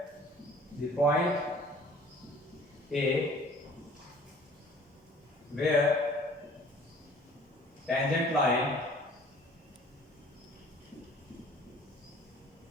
the point A where tangent line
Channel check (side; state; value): both; normal; correlation 0.51